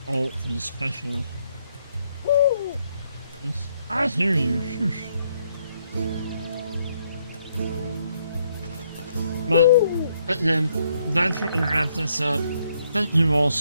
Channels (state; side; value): inverted; both; correlation -0.73